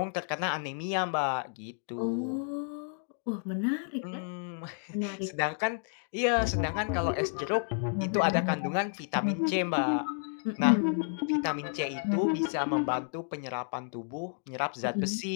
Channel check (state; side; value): silent; right; 57 dB below the other